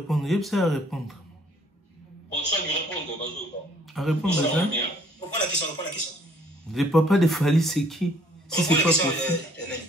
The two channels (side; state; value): both; normal; correlation 0.61